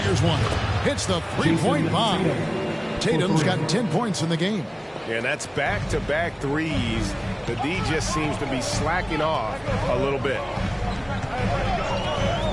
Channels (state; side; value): identical; both; correlation 1.00